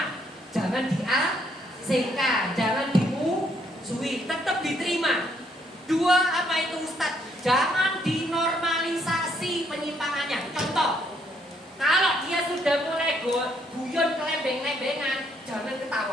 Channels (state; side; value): normal; both; correlation 0.70